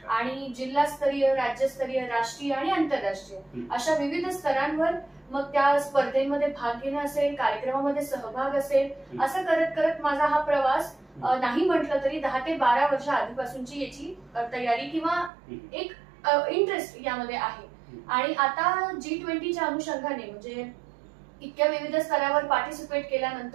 आणि जिल्हास्तरीय, राज्यस्तरीय, राष्ट्रीय आणि आंतरराष्ट्रीय अशा विविध स्तरांवर मग त्या स्पर्धेमध्ये भाग घेणं असेल, कार्यक्रमामध्ये सहभाग असेल, असं करत करत माझा हा प्रवास नाही म्हटलं तरी 10 ते 12 वर्ष आधीपासूनची याची तयारी किंवा एक इंटरेस्ट यामध्ये आहे. आणि आता G20च्या अनुषंगाने म्हणजे इतक्या विविध स्तरावर पार्टिसिपेट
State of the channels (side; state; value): left; drops out; at 15.3 s